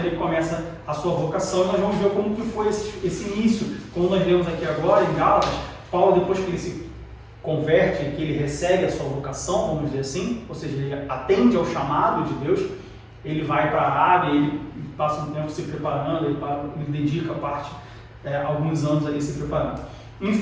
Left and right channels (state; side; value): identical; both; correlation 1.00